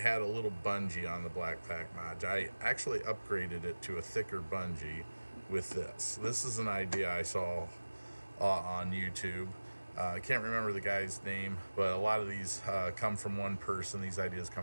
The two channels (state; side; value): inverted; both; correlation -1.00